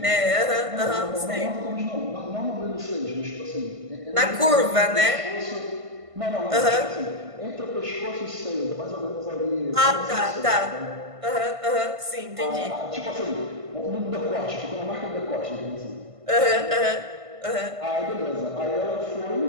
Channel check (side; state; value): left; late; 1.5 ms